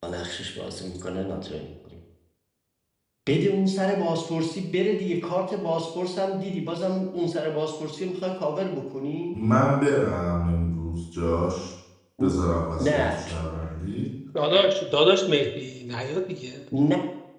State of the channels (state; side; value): identical; both; correlation 1.00